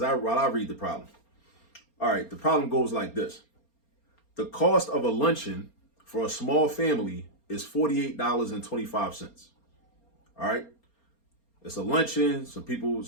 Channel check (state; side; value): late; right; 4.3 ms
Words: I read the problem. All right, the problem goes like this. The cost of a luncheon for a small family is $48.25. All right, it's a luncheon. Some people,